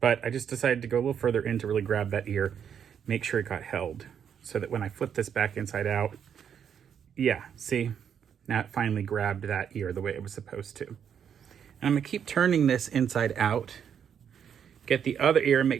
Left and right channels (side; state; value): left; quieter; 8.1 dB